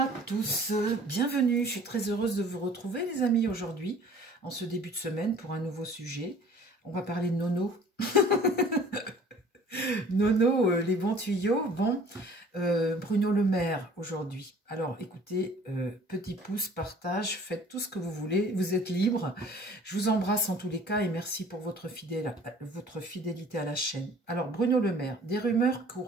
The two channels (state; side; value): normal; both; correlation 0.50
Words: tous, bienvenue, je suis très heureuse de vous retrouver les amis aujourd'hui, en ce début de semaine pour un nouveau sujet. On va parler de Nono. Nono, les bons tuyaux. Bon, Bruno Le Maire aujourd'hui. Alors écoutez, petit pouce, partage, faites tout ce que vous voulez, vous êtes libres. Je vous embrasse en tous les cas et merci pour votre fidélité à la chaîne. Alors Bruno Le Maire, des rumeurs